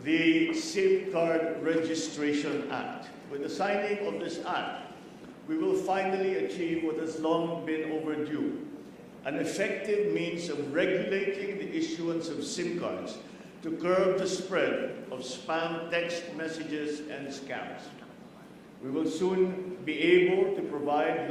the SIM Card Registration Act. With the signing of this act, we will finally achieve what has long been overdue, an effective means of regulating the issuance of SIM cards to curb the spread of spam text messages and scams. We will soon be able to provide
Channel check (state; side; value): identical; both; correlation 1.00